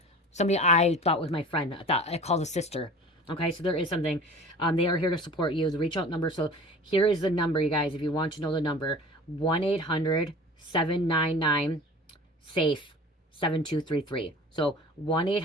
Somebody I thought was my friend. I called a sister. Okay, so there is something. They are here to support you. The reach out number. So here is the number, you guys, if you want to know the number. 1-800-799-SAFE. 7233. So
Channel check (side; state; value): both; normal; correlation 0.42